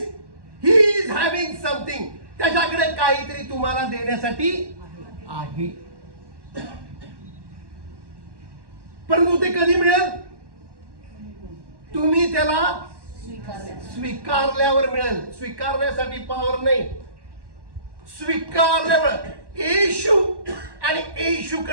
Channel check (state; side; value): late; left; 1.1 ms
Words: he is having something. त्याच्याकडे काहीतरी तुम्हाला देण्यासाठी आहे. परंतु ते कधी मिळेल? तुम्ही त्याला स्वीकारल्यावर मिळेल. स्वीकारण्यासाठी पावर नाही, स्वीकारल्यावर. येशू आणि